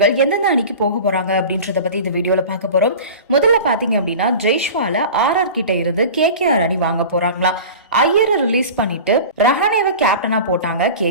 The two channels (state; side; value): inverted; both; correlation -0.35